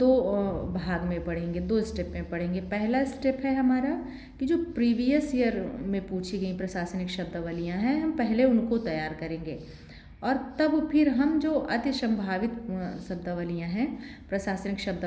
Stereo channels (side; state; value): both; identical; correlation 1.00